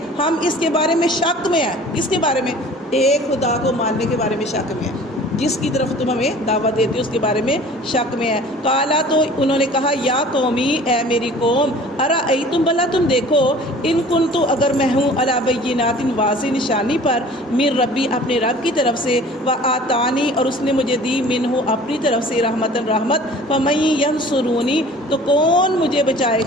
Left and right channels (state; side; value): normal; both; correlation 0.47